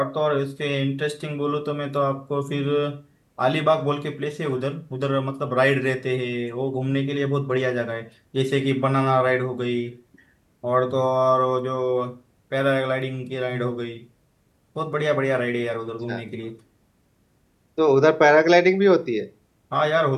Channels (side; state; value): both; identical; correlation 1.00